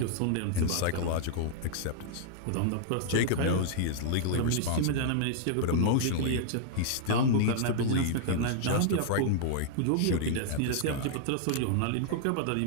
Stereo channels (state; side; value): different; both; correlation -0.01